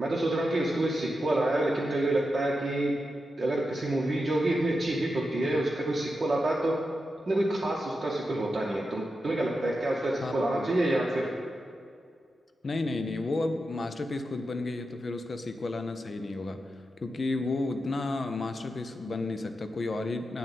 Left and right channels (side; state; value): both; normal; correlation 0.89